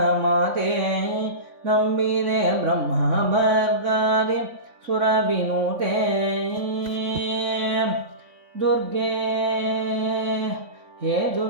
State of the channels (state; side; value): late; left; 3.5 ms